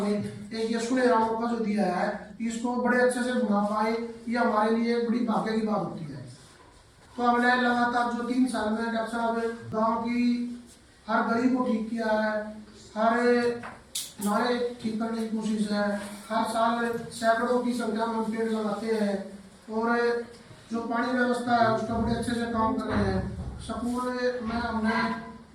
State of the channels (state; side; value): identical; both; correlation 1.00